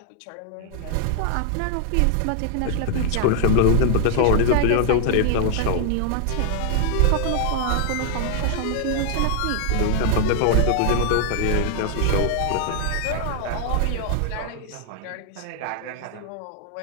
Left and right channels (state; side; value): different; both; correlation 0.00